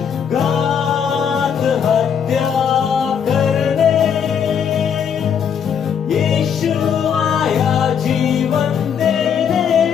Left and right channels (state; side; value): quieter; right; 7.7 dB